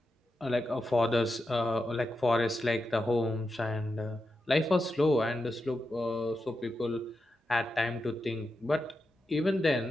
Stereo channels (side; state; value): both; normal; correlation 0.88